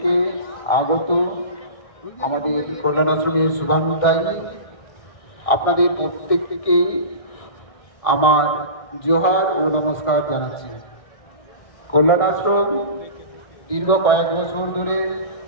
আগত আমাদের কল্যাণ আশ্রমের শুভানুধ্যায়ী। আপনাদের প্রত্যেককে আমার জোহার ও নমস্কার জানাচ্ছি। কল্যাণ আশ্রম দীর্ঘ কয়েক বছর ধরে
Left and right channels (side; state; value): right; late; 1.6 ms